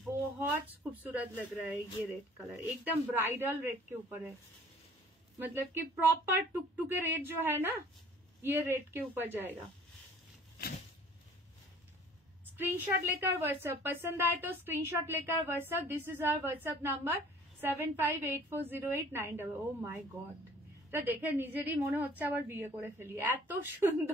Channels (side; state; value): both; normal; correlation 0.52